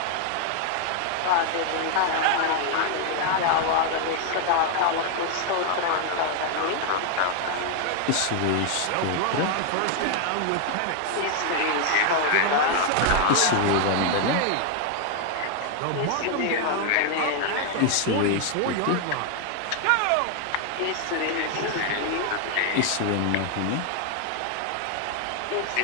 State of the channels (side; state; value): both; different; correlation 0.00